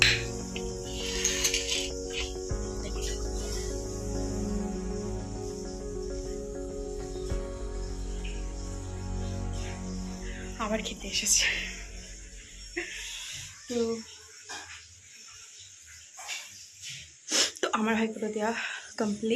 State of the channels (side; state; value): both; identical; correlation 1.00